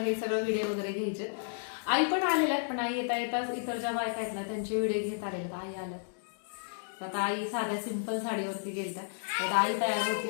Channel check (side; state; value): right; silent; digital silence